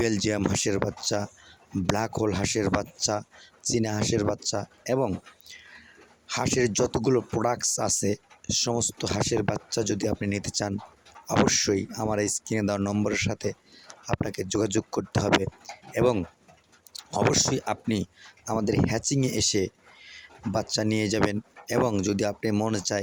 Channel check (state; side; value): identical; both; correlation 1.00